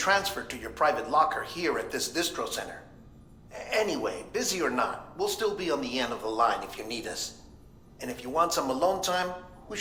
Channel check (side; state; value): both; identical; correlation 1.00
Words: to your private locker here at this distro center. Anyway, busy or not, we'll still be on the end of the line if you need us. And if you want some alone time, we